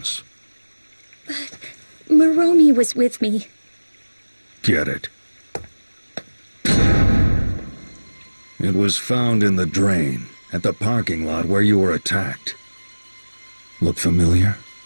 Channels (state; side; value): inverted; both; correlation -1.00